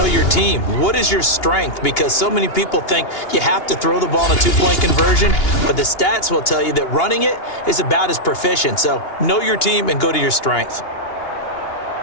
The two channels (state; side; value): late; right; 2.8 ms